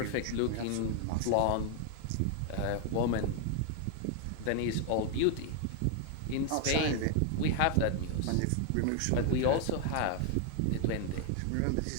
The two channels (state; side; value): different; both; correlation 0.00